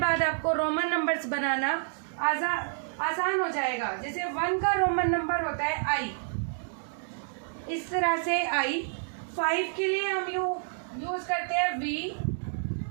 आपको रोमन नंबर्स बनाना आसान हो जाएगा। जैसे 1 का रोमन नंबर होता है आई, इस तरह से आई। 5 के लिए हम यूज करते हैं वी,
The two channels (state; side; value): silent; left; digital silence